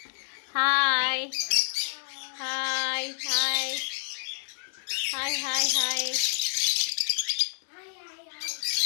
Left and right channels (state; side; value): silent; right; digital silence